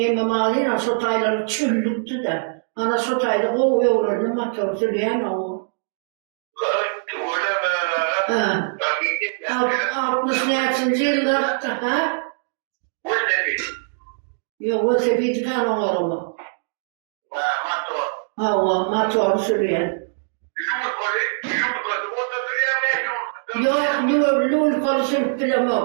sotayları çüllüktü de. Ana sotayda o yoğurdu motor sürüyen o. Ha. 68. yılda ha? Yok o sepeti kan oğlum. Hava motor sürüyen. Yok lul kolu sürüp bile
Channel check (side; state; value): left; silent; digital silence